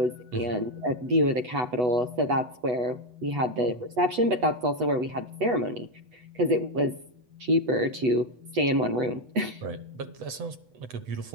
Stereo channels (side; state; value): left; late; 8.1 ms